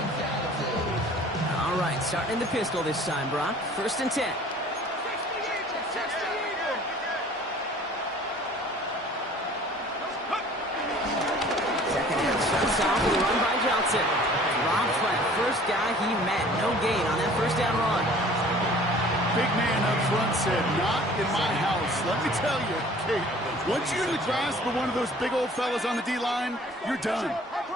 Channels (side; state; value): both; normal; correlation 0.50